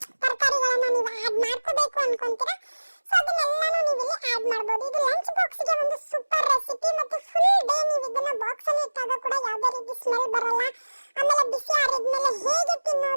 ತರಕಾರಿಗಳನ್ನ ನೀವು ಆ್ಯಡ್ ಮಾಡ್ಕೋಬೇಕು ಅನ್ಕೊಂತೀರಾ, ಸೊ ಅದನ್ನೆಲ್ಲಾನು ನೀವು ಇಲ್ಲಿ ಆ್ಯಡ್ ಮಾಡಬಹುದು. ಇದು ಲಂಚ್ ಬಾಕ್ಸ್ಗೆ ಒಂದು ಸೂಪರ್ ರೆಸಿಪಿ. ಮತ್ತೆ ಫುಲ್ ಡೇ ನೀವು ಇದನ್ನ ಬಾಕ್ಸ್ ಅಲ್ಲಿ ಇಟ್ಟಾಗ ಕೂಡ ಯಾವುದೇ ರೀತಿ ಸ್ಮೆಲ್ ಬರಲ್ಲ. ಆಮೇಲೆ ಬಿಸಿ ಆರಿದ್ಮೇಲೆ ಹೇಗೆ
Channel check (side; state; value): both; inverted; correlation -1.00